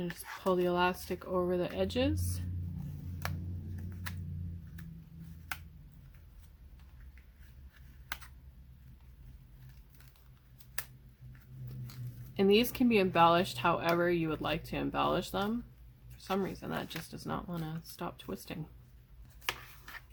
just pull the elastic over the edges. And these can be embellished however you would like to embellish them. For some reason, that just does not want to stop twisting.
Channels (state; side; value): identical; both; correlation 1.00